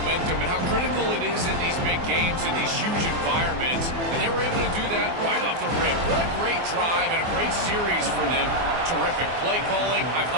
and how critical it is in these big games, in these huge environments, and they were able to do that right off the rip. What a great drive and a great series for them. Terrific play calling. I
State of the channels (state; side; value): late; left; 24 ms